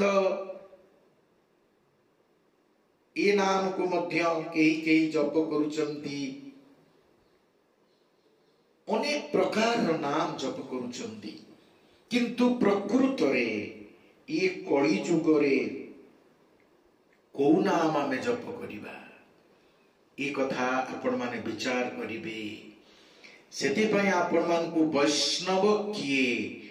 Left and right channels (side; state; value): both; identical; correlation 1.00